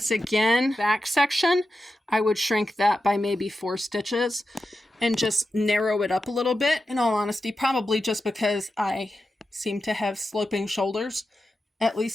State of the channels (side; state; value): both; normal; correlation 0.91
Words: again, back section, I would shrink that by maybe 4 stitches and just narrow it up a little bit. In all honesty, probably just because I seem to have sloping shoulders, at